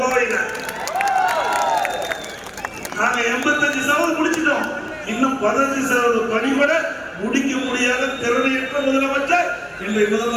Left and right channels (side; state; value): both; identical; correlation 1.00